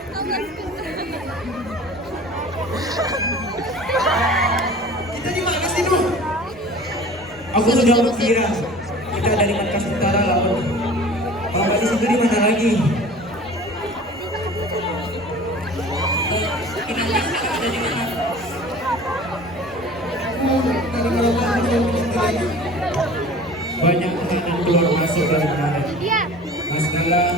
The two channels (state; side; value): normal; both; correlation 0.43